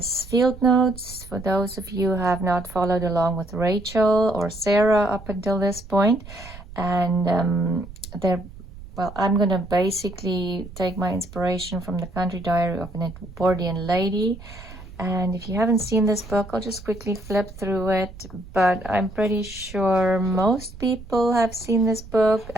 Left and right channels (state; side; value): noise; right; rumble, 16 dB below the sound